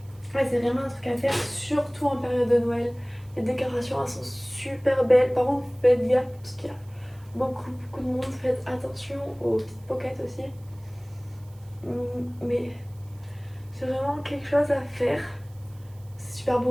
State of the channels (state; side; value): noise; right; hiss, 29 dB below the sound